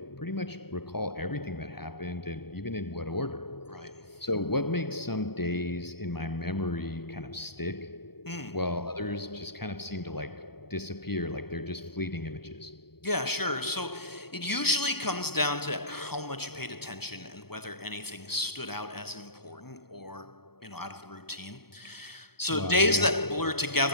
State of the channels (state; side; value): late; right; 0.96 ms